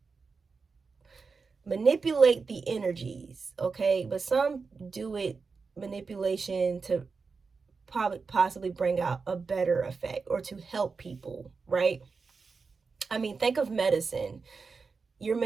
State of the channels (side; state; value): left; quieter; 4.8 dB